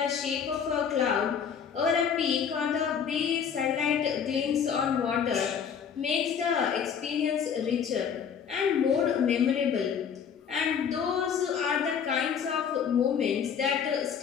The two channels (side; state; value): right; quieter; 7.4 dB